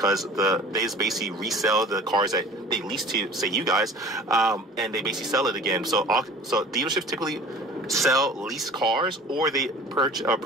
they just basically resell the cars that they lease to, say, you guys, and they basically sell it again. So dealerships typically sell lease cars, or they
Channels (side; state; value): both; normal; correlation 0.44